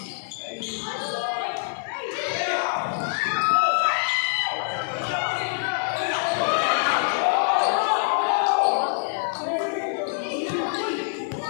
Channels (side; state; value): right; silent; 62 dB below the other